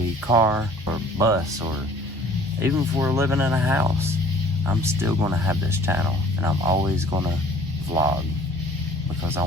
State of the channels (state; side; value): normal; both; correlation 0.52